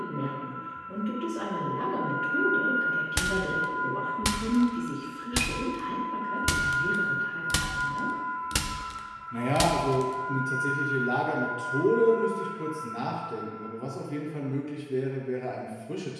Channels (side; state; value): both; identical; correlation 1.00